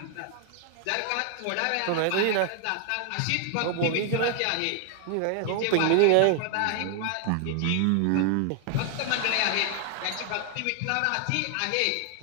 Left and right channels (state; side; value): different; both; correlation 0.00